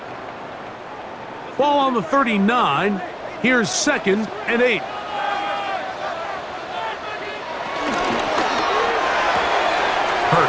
Ball on the 39. Here's 2nd and 8.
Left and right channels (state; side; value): identical; both; correlation 1.00